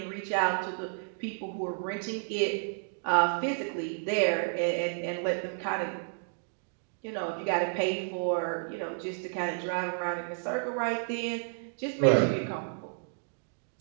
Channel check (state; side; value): silent; left; digital silence